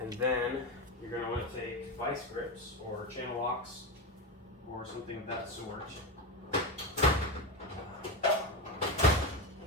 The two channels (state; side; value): normal; both; correlation 0.16